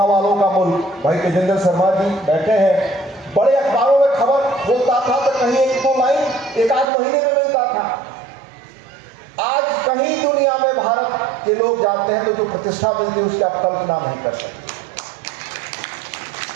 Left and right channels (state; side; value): drops out; left; at 6.9 s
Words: वालों का मुल्क। भाई तेजेंद्र शर्मा जी बैठे हैं, बड़े अखबारों में खबर होता था तो कहीं 1-2 लाइन एक आध महीने में मिलता था। आज कहीं दुनिया में भारत के लोग जाते हैं तो जो प्रतिष्ठा मिलती है उसकी आप कल्पना नहीं कर सकते।